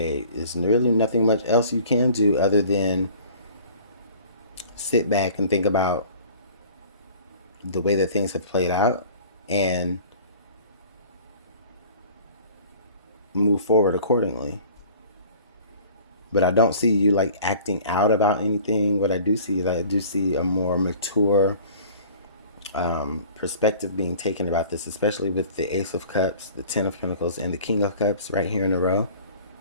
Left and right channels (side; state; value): both; inverted; correlation -0.48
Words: there's really nothing much else you can do other than sit back and think about the way that things have played out and move forward accordingly. But I don't see you like acting out about anything. What I do see is I do see a more mature perspective being taken about this, especially with the Ace of Cups, the Ten of Pentacles, and the King of Cups right here in a row.